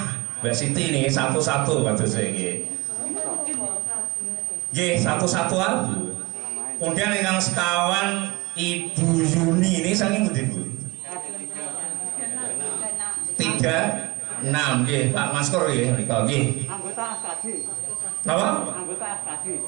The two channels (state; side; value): quieter; left; 24.0 dB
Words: Mbak Siti niki satu-satu kados nggih. Nggih, satu-satu abu. Kemudian ingkang sekawan Ibu Yuni ini saking pundi Bu? 36 nggih, Pak Maskor nggih nika nggih. Anggota SKD. Napa? Anggota SKD.